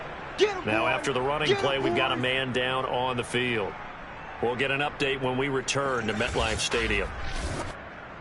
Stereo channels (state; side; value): identical; both; correlation 1.00